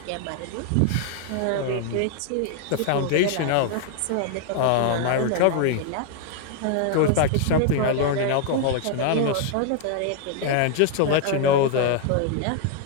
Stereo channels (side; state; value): both; different; correlation 0.00